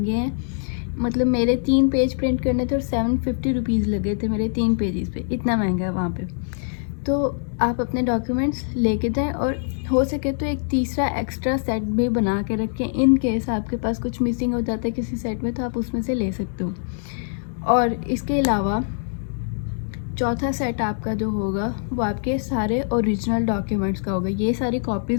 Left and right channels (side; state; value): right; silent; digital silence